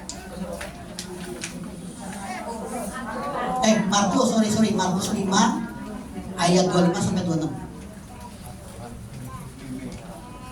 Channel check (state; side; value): identical; both; correlation 1.00